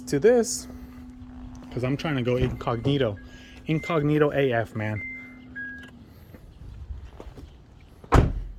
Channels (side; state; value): both; identical; correlation 1.00